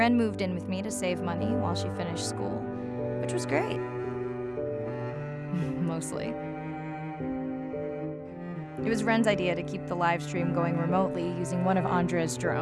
moved in with me to save money while she finished school, which was great. Mostly. It was Ren's idea to keep the live stream going remotely using one of Andre's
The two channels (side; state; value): both; identical; correlation 1.00